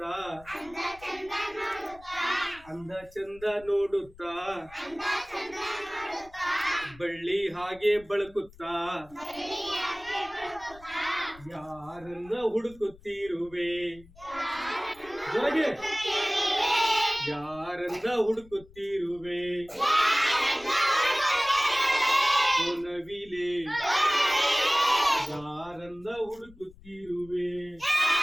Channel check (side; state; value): left; noise; rumble, 23 dB below the sound